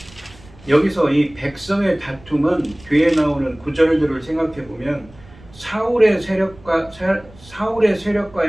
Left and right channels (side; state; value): right; noise; rumble, 23 dB below the sound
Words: 여기서 이 백성의 다툼은 뒤에 나오는 구절들을 생각해 보면 사울의